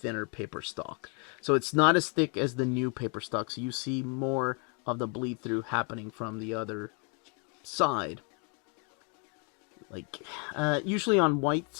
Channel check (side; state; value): right; quieter; 37.4 dB